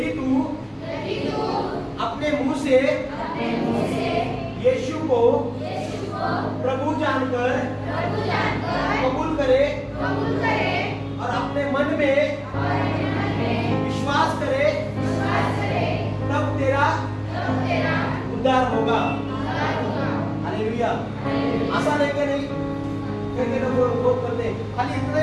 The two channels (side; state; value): both; identical; correlation 1.00